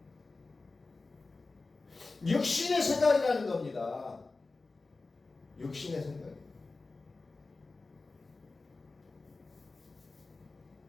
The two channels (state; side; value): quieter; right; 3.6 dB